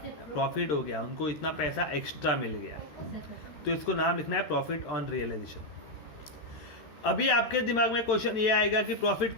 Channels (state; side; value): late; right; 13 ms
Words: प्रॉफिट हो गया। उनको इतना पैसा एक्स्ट्रा मिल गया। तो इसको नाम लिखना है प्रॉफिट ऑन रियलाइजेशन। अभी आपके दिमाग में क्वेश्चन ये आएगा कि प्रॉफिट